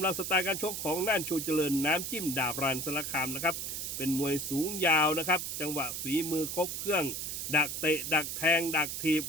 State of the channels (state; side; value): noise; right; hiss, 4 dB below the sound